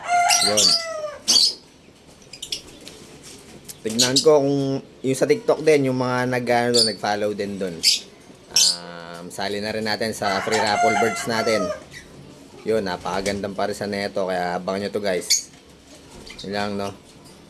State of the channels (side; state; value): both; identical; correlation 1.00